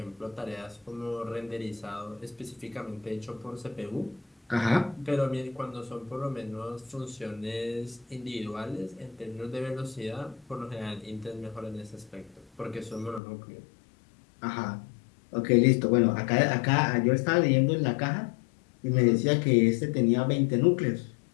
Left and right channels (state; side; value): drops out; right; at 13.2 s